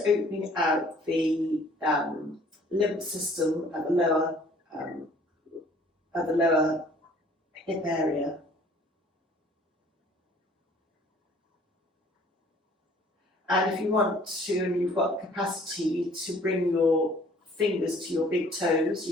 opening out the lymph system at the lower hip area. And if you want to, and you've got the capacity to bring your fingers to your big toes.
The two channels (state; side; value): normal; both; correlation 0.55